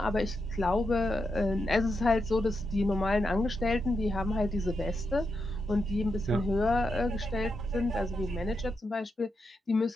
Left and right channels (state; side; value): normal; both; correlation 0.85